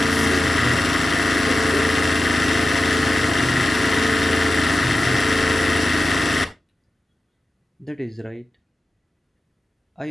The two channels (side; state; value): both; normal; correlation 0.94